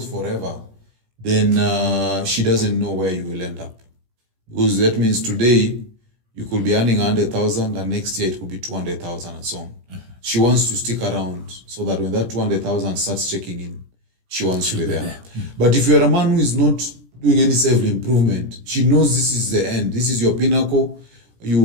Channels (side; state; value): left; late; 17 ms